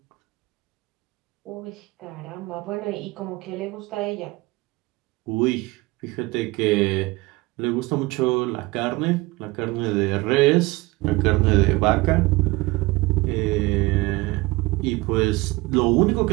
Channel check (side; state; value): left; quieter; 22.1 dB